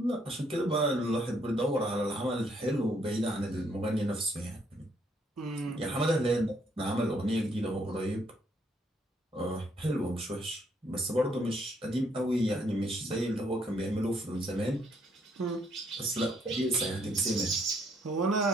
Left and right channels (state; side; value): normal; both; correlation 0.70